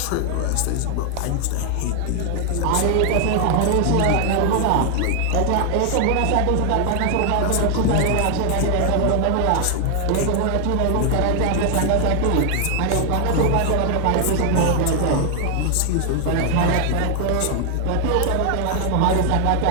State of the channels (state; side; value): different; both; correlation 0.00